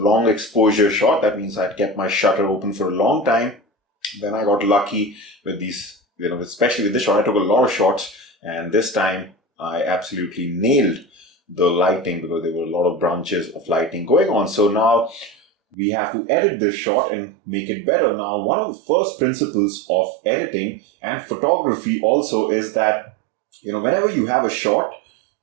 exposure shot. That means I'd kept my shutter open for a long time. Then I got lucky with these, especially with this shot. I took a lot of shots, and this time I absolutely nailed the lighting because there were a lot of branches of lighting going on. So now we have to edit this shot and make it better. Now, one of the first principles of editing and photography also is that, whenever you have a shot,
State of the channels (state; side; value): drops out; left; at 15.8 s